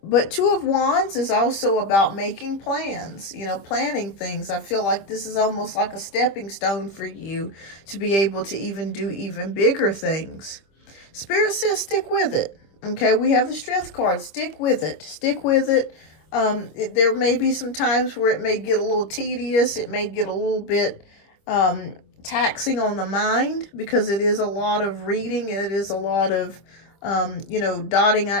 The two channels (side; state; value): right; late; 25 ms